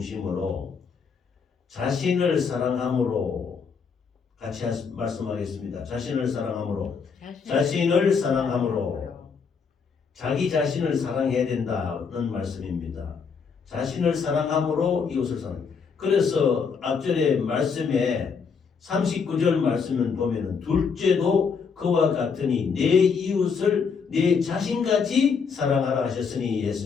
자신을 사랑함으로 같이 말씀하겠습니다. 자신을 사랑함으로 자기 자신을 사랑해야 된다는 말씀입니다. 자신을 사랑함으로 이웃을 사랑. 그래서 앞절의 말씀에 39절 말씀을 보면은 둘째도 그와 같으니 내 이웃을 내 자신같이 사랑하라 하셨으니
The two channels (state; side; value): quieter; right; 5.8 dB